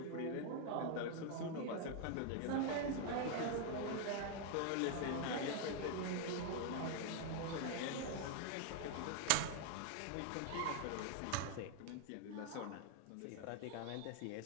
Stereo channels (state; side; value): different; both; correlation 0.00